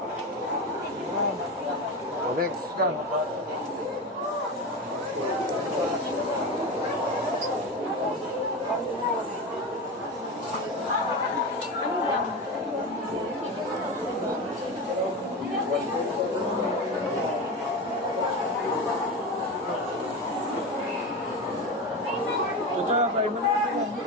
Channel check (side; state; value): both; normal; correlation 0.22